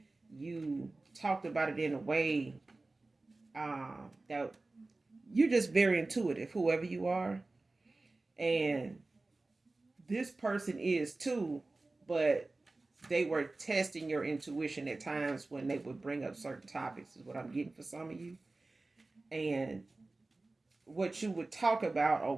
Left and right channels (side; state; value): left; quieter; 3.2 dB